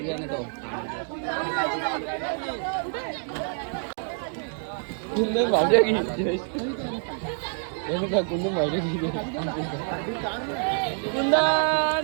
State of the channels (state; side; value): silent; left; 60 dB below the other